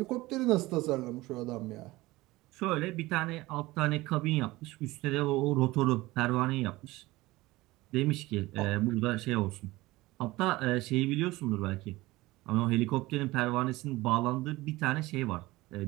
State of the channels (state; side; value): quieter; left; 19.6 dB